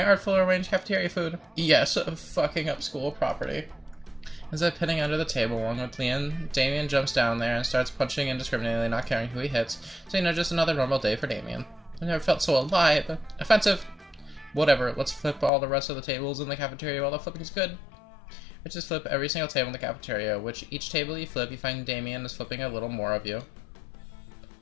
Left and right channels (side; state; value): right; drops out; at 15.5 s